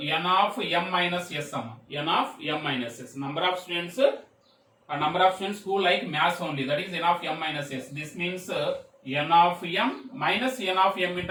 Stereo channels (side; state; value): both; identical; correlation 1.00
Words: of m minus s. N of m minus s. Number of students a number of students who like maths only, that is n of m minus s. This means n of m minus n of m